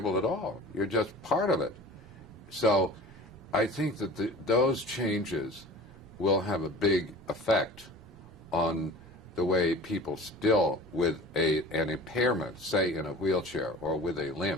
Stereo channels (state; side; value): noise; right; rumble, 26 dB below the sound